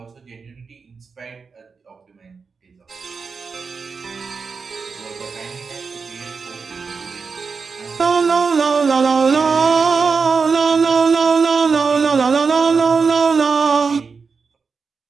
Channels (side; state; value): left; quieter; 5.1 dB